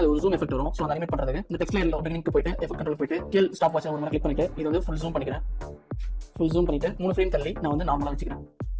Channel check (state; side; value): identical; both; correlation 1.00